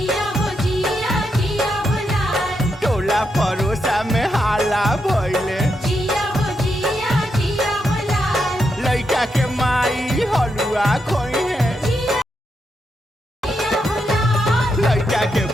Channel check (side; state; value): both; normal; correlation 0.83